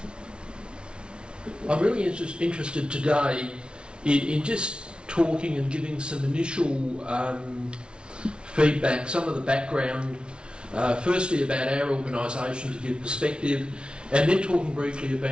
I'm really interested today in just talking and giving some initial feedback, some of the background, firstly about our organisation to give perspective, and then talking briefly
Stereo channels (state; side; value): late; left; 0.057 ms